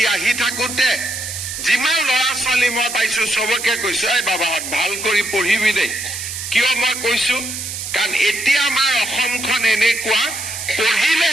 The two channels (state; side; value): noise; right; hiss, 6 dB below the sound